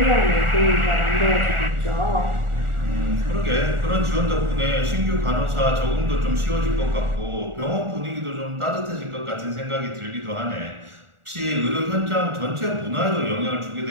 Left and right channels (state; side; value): late; left; 1.4 ms